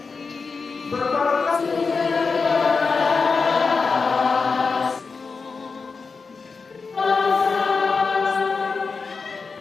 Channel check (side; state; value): right; quieter; 4.7 dB